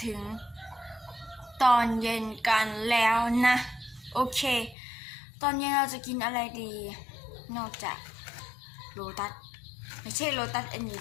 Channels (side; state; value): right; drops out; at 4.8 s